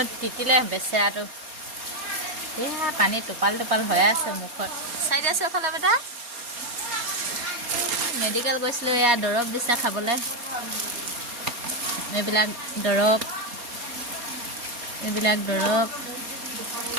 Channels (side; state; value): left; late; 4.2 ms